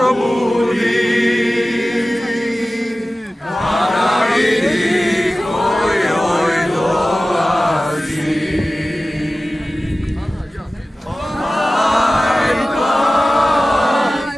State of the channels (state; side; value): normal; both; correlation 0.96